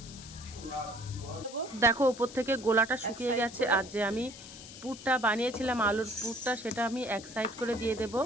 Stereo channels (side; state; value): left; noise; hiss, 15 dB below the sound